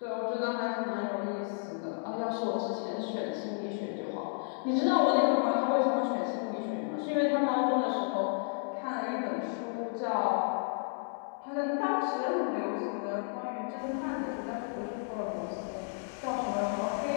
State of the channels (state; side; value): silent; right; 56 dB below the other